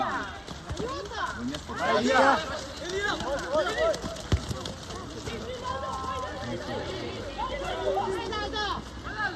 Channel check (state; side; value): identical; both; correlation 1.00